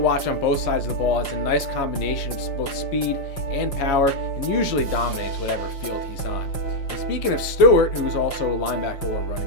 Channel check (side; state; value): right; late; 5.8 ms